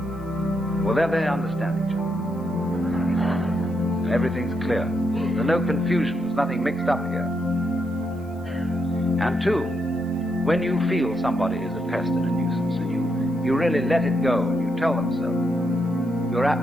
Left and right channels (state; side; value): noise; right; hiss, 30 dB below the sound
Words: Well, there they understand each other. Everything's clear. There's no confusion, there's nothing mixed up here. And two, when you feel somebody is a pest and a nuisance, and you really let it go, and you tell them so, you're